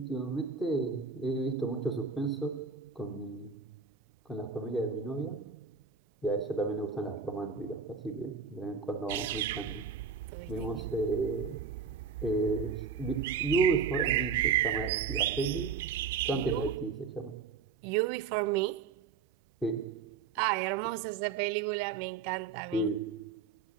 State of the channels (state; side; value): quieter; left; 5.7 dB